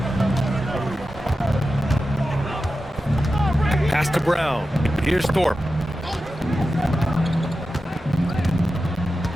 Pass to Brown. Here's Thorpe.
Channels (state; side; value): normal; both; correlation 0.92